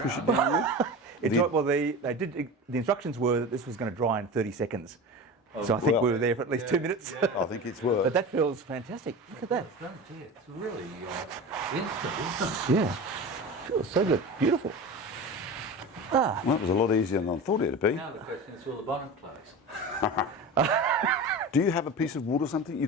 it around. down with? The instructions were that this was going to dry in 30 seconds. So I think we were there for at least 2 minutes. I think it's worked. But that feels fantastic. Look at that. It's really instant, isn't it? Yeah. Feels so good. Beautiful. Well, that was a lot easier than I thought it'd be. Now the question is, will the bonnet close? Do you have a piece of wood or something you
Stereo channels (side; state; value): both; normal; correlation 0.30